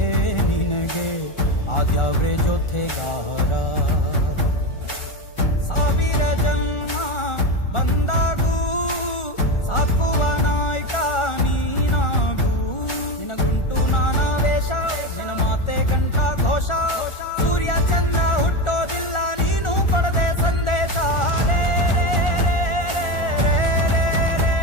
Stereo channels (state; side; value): late; right; 1.4 ms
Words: ನಿನಗೆ ಆದ್ಯಾವ್ರೆ ಜೊತೆಗಾರ. ಸಾವಿರ ಜನ್ಮ ಬಂದಾಗೂ ಸಾಕುವ ನಾಯಕ ನೀನಾಗೂ, ನಿನಗುಂಟು ನಾನಾ ವೇಷ ನಿನ ಮಾತೆ ಗಂಟ ಘೋಷ, ಸೂರ್ಯ ಚಂದ್ರ ಹುಟ್ಟೋದಿಲ್ಲ ನೀನು ಕೊಡದೆ ಸಂದೇಶ. ರೇ ರೇ ರೇ ರೇ ರೇ ರೇ ರೇ